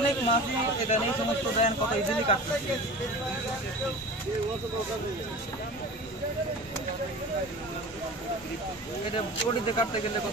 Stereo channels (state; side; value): normal; both; correlation 0.35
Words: মাছই এখানে এই সমস্ত দেন, কত ইজিলি কাটতেছে। এটা পটিতে কাটতে গেলে